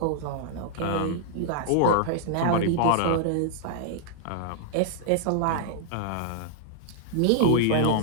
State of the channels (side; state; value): both; different; correlation -0.01